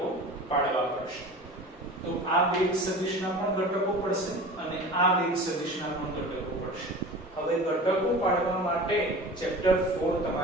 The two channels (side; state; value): both; normal; correlation 0.37